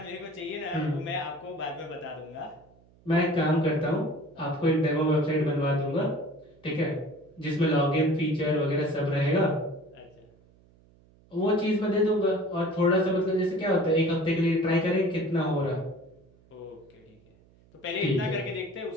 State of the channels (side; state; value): right; noise; hum, 29 dB below the sound